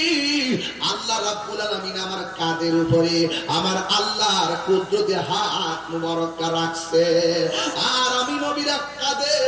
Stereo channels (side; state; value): both; identical; correlation 1.00